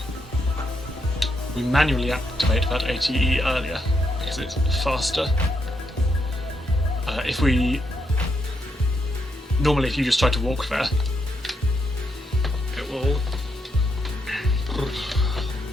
We manually activate that ATE earlier because it's faster. Normally if you just try to walk there, it will...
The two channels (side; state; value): both; normal; correlation 0.79